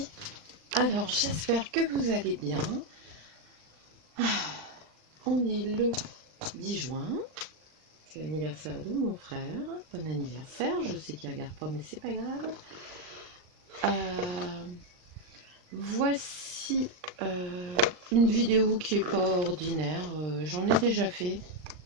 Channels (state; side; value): late; left; 39 ms